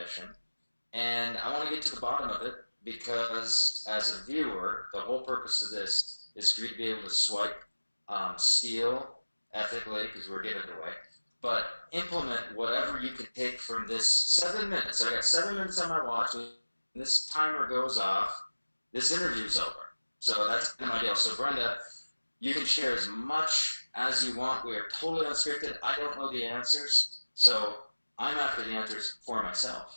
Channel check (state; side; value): inverted; both; correlation -1.00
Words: And I want to get to the bottom of it because, as a viewer, the whole purpose of this is for you to be able to swipe, steal ethically because we're giving it away, but implement whatever you can take from this 7 minutes. I got 7 minutes on my watch. When this timer goes off, this interview's over. So that's my deal. So, Brenda, you can share as much as you want. We are totally unscripted. I don't know the answers. So, I'm after the answers for